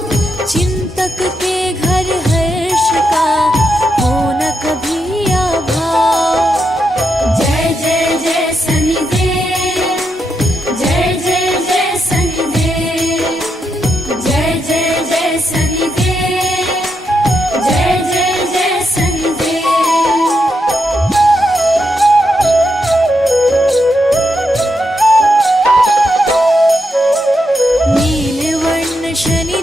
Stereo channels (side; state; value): both; normal; correlation 0.82